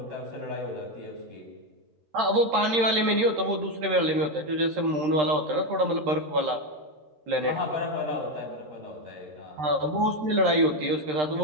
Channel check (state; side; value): late; left; 13 ms